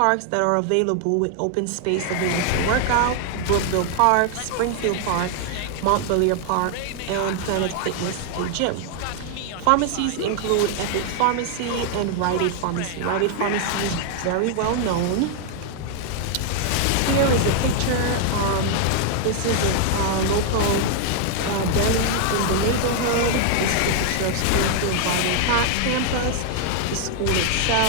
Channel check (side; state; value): both; different; correlation 0.00